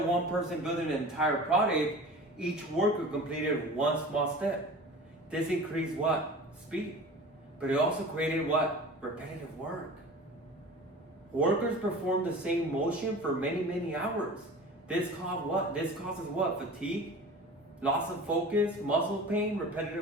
one person building an entire product, each worker completed one small step. This increased what? Speed. But it also created what? Repetitive work. Workers perform the same motion for many, many hours. This causes what? This causes what? Fatigue, loss of focus, muscle pain,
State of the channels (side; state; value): both; normal; correlation 0.38